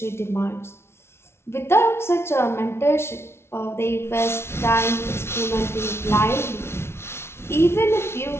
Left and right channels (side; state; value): right; late; 0.12 ms